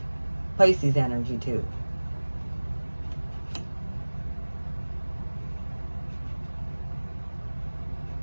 Pisces energy too.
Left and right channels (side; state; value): both; inverted; correlation -1.00